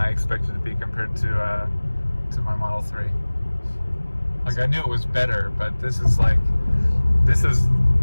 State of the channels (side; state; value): both; inverted; correlation -1.00